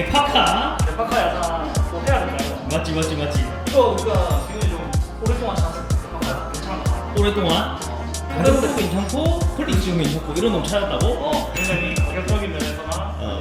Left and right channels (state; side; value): identical; both; correlation 1.00